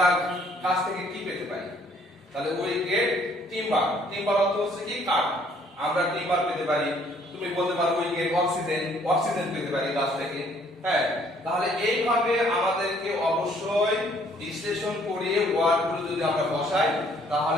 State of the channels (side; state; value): both; normal; correlation 0.62